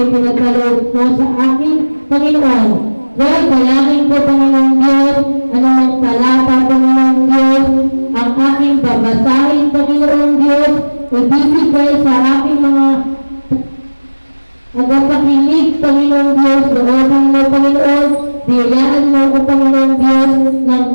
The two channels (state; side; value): inverted; both; correlation -1.00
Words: pinagkaloob mo sa akin, Panginoon. Lord, dalangin ko, Panginoong Diyos, anumang talata, Panginoong Diyos, ang aking babasahin, Panginoong Diyos, ibibigay sa aking mga nagapakinig, Panginoong Diyos, loobin mo, Panginoon, biyayaan mo ko, Panginoong Diyos, ng